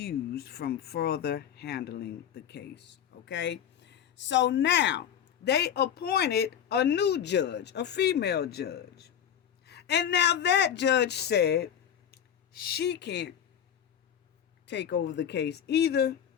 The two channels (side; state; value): right; quieter; 9.2 dB